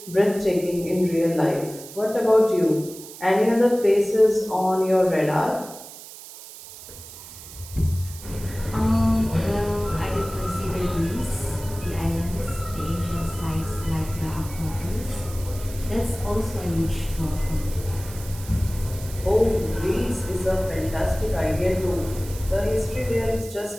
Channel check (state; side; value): noise; right; hiss, 15 dB below the sound